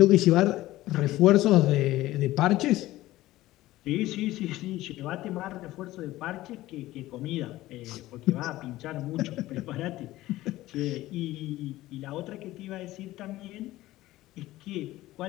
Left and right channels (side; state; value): right; quieter; 16.5 dB